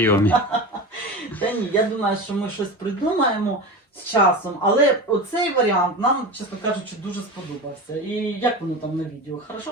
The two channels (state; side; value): normal; both; correlation 0.27